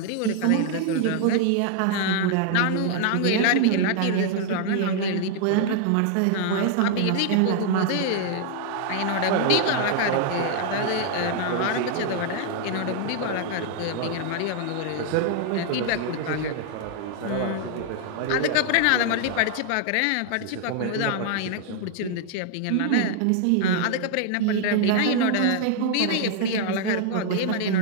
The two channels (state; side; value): different; both; correlation 0.00